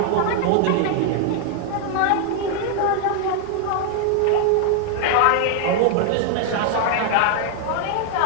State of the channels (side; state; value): both; different; correlation 0.00